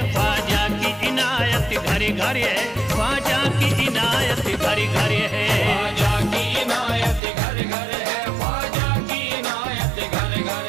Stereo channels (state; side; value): drops out; left; at 7.2 s